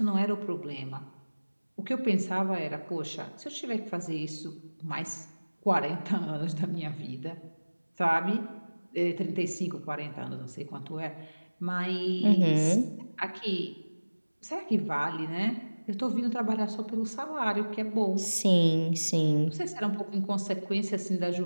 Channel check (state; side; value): inverted; both; correlation -1.00